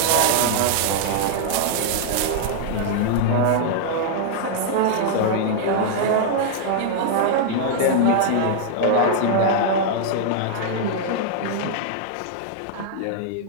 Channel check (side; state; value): both; different; correlation -0.01